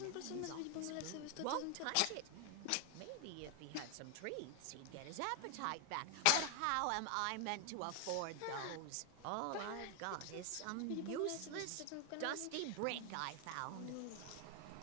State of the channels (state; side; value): different; both; correlation 0.00